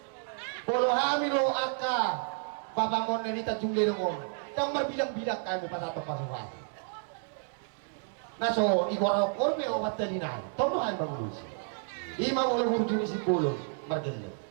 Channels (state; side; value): silent; left; 57 dB below the other